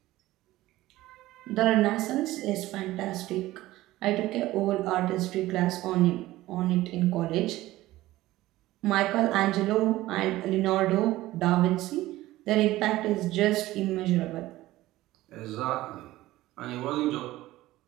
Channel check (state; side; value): quieter; left; 16.7 dB